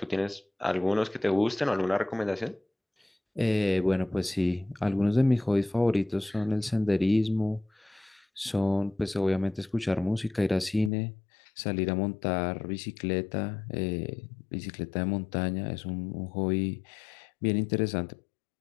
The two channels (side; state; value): right; drops out; at 10.9 s